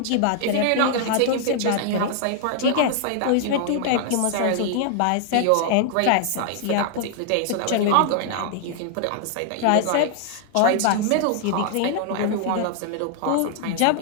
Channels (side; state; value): both; different; correlation 0.00